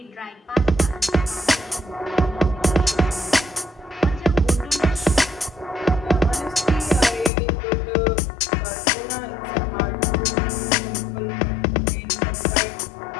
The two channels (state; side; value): drops out; right; at 7.3 s